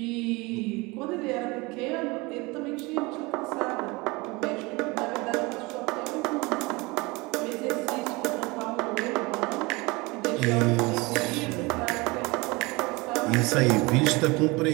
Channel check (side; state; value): left; quieter; 24.6 dB